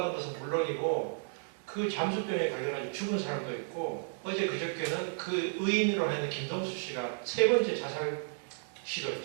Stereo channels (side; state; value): left; silent; digital silence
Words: 것은 물론이고 그 잠수병에 걸려가지고 죽은 사람도 있고, 어제 그저께는 그 의인으로 하는 김동수 씨가 3번째 자살